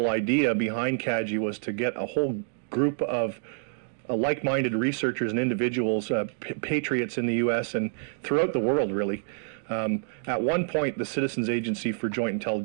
idea behind CAGI was to get a whole group of like-minded researchers and individuals, patriots in the U.S. and throughout the world, really. At one point, the Citizens Agency for Joint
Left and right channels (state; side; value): silent; left; digital silence